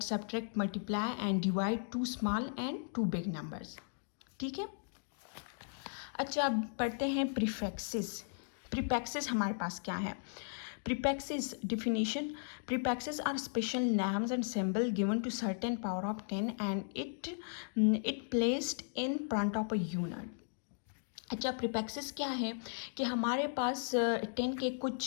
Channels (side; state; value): right; silent; digital silence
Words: subtract multiply and divide to small and to big numbers, ठीक है। अच्छा, अब पढ़ते हैं प्रीफिक्सेस। प्रीफिक्सेस हमारे पास क्या है। Prefixes definition: prefixes are special names and symbol given to certain power of 10 and it placed in front of a unit. अच्छा, प्रीफिक्सेस क्या है कि हमारे पास 10 के